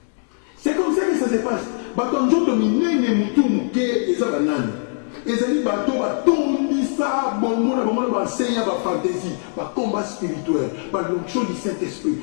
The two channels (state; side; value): silent; right; 65 dB below the other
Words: C'est comme ça que ça se passe. Bato njoto minene mutu muke eza banani. Ezali bato batondisa bongo na bango na ba enseigne ba fantaisie, ba combat spirituel, ba l'onction du Saint-Esprit,